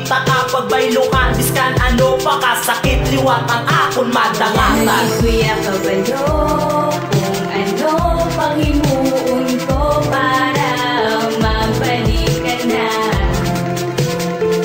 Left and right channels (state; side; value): identical; both; correlation 1.00